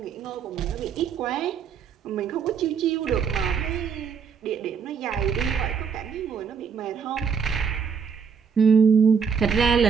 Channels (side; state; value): left; quieter; 6.5 dB